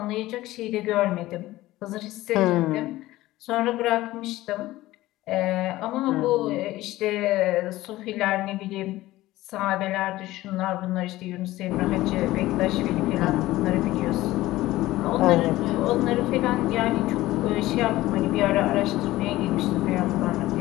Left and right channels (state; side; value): quieter; right; 16.9 dB